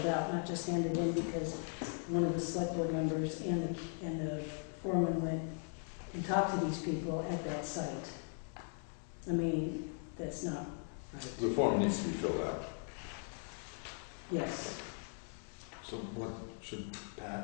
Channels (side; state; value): right; silent; 52 dB below the other